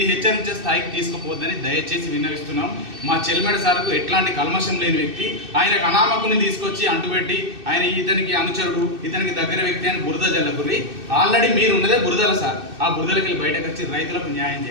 హెచ్చరించే స్థాయికి తీసుకుపోద్దని దయచేసి విన్నవిస్తున్నాం. మా చెల్మెర సార్కు ఎట్లాంటి కల్మషం లేని వ్యక్తి, ఆయనకు అనామకుని తీసుకొచ్చి అంటుపెట్టి ఆయన ఇతనికి అనుచరుడు, ఇతనికి దగ్గర వ్యక్తి అని బురద జల్లకుర్రి. ఆల్రెడీ మీరు ఉన్నదే బురదల సార్, ఆ బురదలకి వెళ్ళి బయటకు వచ్చి రైతులకు న్యాయం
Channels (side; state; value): left; late; 2.6 ms